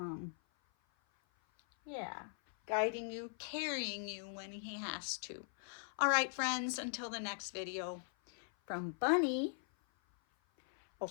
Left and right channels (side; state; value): right; silent; 51 dB below the other